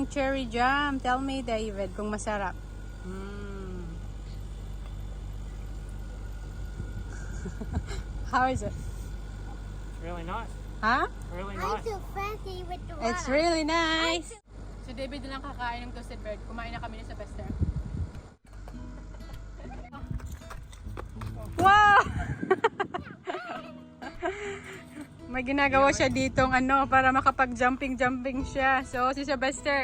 cherry jam. Tell me, David, kung masarap. How is it? Really nice. Huh? Really I'm nice. so fancy with the water. It's really nice. Si David na lang kakain ng toasted bread. Kumain na kami ni Sylvester. Wow! May ginagawa siya ditong ano para makapag-jumping siya. So si Sylvester,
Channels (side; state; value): both; identical; correlation 1.00